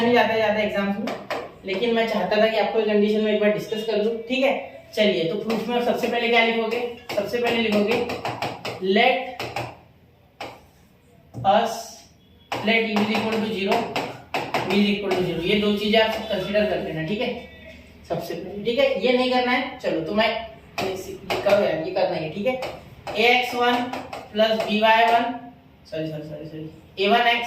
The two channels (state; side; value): identical; both; correlation 1.00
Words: जाता ज्यादा एग्जाम्स में, लेकिन मैं चाहता था कि आपको ये कंडीशन में एक बार डिस्कस कर लूं। ठीक है, चलिए तो प्रूफ में सबसे पहले क्या लिखोगे, सबसे पहले लिखोगे लेट u = 0 v = 0। ये दो चीजें आप कंसीडर कर लेना। ठीक है, सबसे पहले। ठीक है, ये नहीं करना है, चलो तो मैं ये करना है। ठीक है, ax1 + by1 a1x